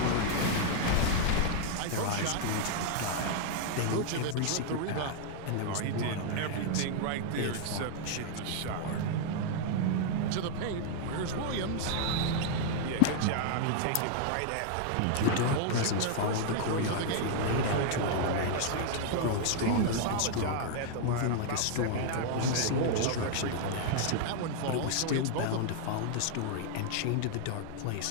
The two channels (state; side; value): different; both; correlation 0.00